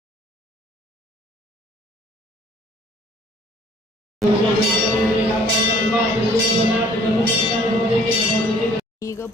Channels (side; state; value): both; normal; correlation 0.56